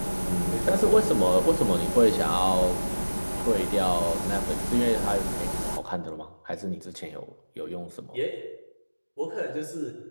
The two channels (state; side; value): inverted; both; correlation -1.00